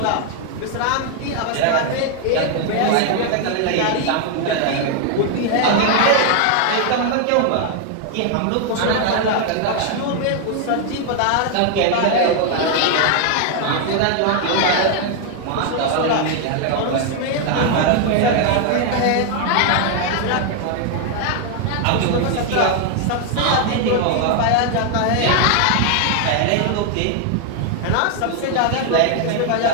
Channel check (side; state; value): both; different; correlation 0.00